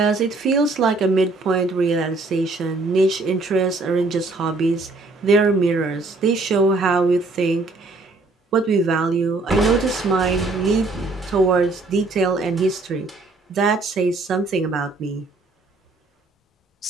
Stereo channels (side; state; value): left; quieter; 3.4 dB